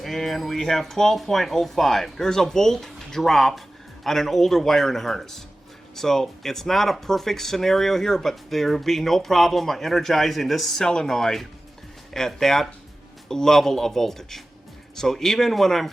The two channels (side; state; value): both; normal; correlation 0.96